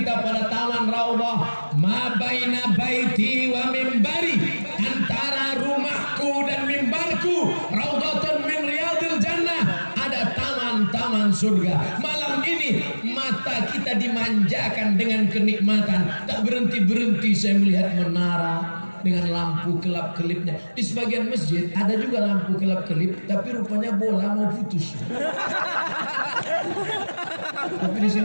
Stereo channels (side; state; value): both; inverted; correlation -1.00